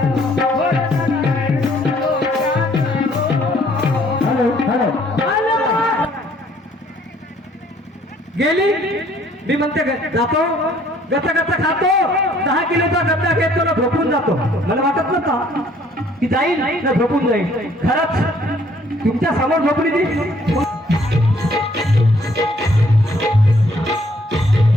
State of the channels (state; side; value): normal; both; correlation 0.62